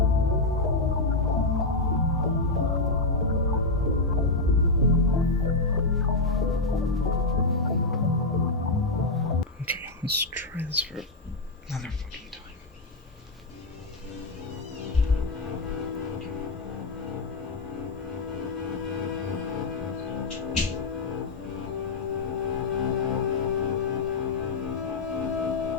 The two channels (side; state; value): right; quieter; 3.2 dB